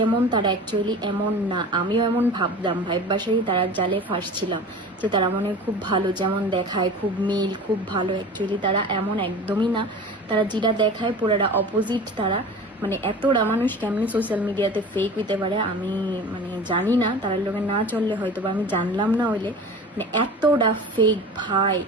তারা অ্যাকচুয়ালি এমন না। আমিও এমন ভাবতাম, বাসায় তারা জালে ফাঁসছিলাম যে তারা মনে হয় খুব ভালো, যেমন দেখায় খুব মিল খুব ভালো। অ্যাকচুয়ালি তারা এমন একদমই না। তারা যেটা দেখায় পুরাটা অপোজিট। তারা মানে এতটা মানুষ কেমনি সোশ্যাল মিডিয়াতে ফেক হইতে পারে আমি মানে জানি না। তার লোকে না চললে হয়তো বা আমি জানলাম না হইলে মানে এতটা ফেক ভাই।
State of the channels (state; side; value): normal; both; correlation 0.37